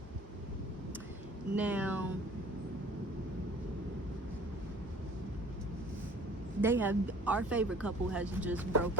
Now, our favorite couple has just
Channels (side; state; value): both; normal; correlation 0.50